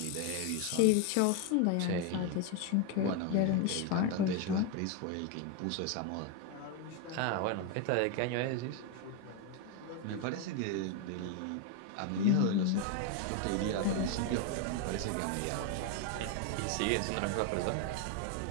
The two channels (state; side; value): different; both; correlation 0.01